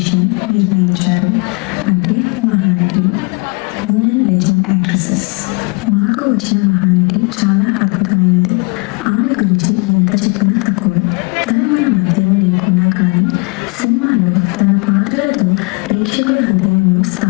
నిర్ణయించారు. అంటే మహానటులు, women legend actresses. మాకు వచ్చిన మహానటి చాలా అద్భుతమైనది. ఆమె గురించి ఎంత చెప్పినా తక్కువే. తను మన మధ్యలో లేకున్నా కానీ సినిమాలో తన పాత్రలతో ప్రేక్షకుల హృదయంలో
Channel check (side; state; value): right; quieter; 30.2 dB